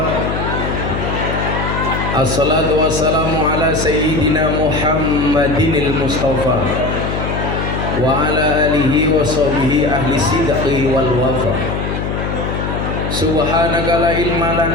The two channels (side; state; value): left; noise; hum, 3 dB below the sound